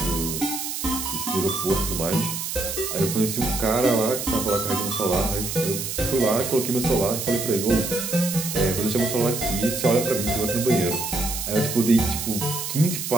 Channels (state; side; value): noise; right; hiss, 4 dB below the sound